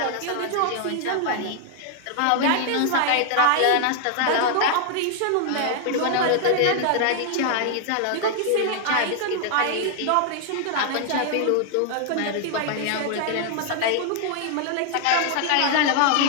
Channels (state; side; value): different; both; correlation 0.00